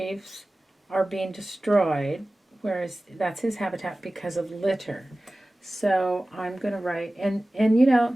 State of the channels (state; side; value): normal; both; correlation 0.97